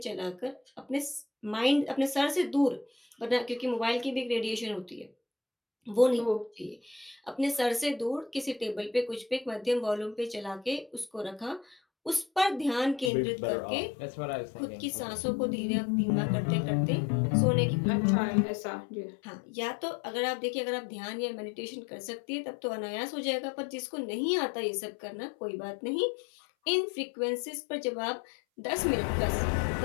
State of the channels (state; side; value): drops out; right; at 13.1 s